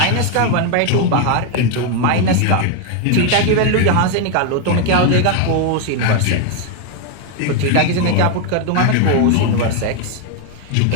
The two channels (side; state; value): both; different; correlation 0.01